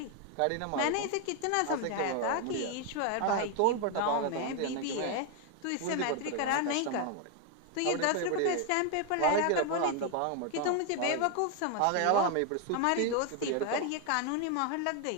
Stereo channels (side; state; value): both; different; correlation 0.00